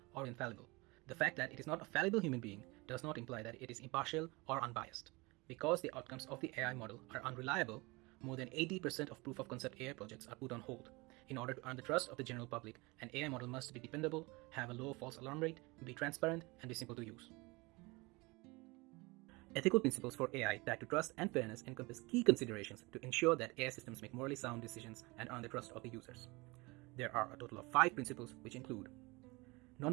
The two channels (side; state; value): left; quieter; 24.7 dB